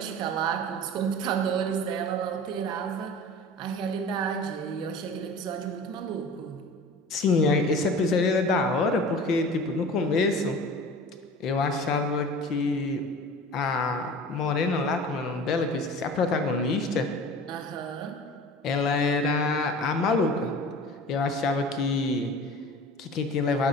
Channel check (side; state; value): both; normal; correlation 0.39